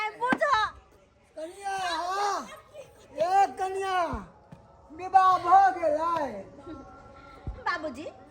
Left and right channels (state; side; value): identical; both; correlation 1.00